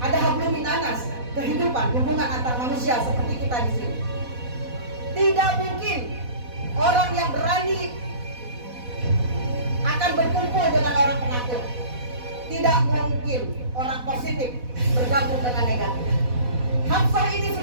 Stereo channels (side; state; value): left; late; 4.1 ms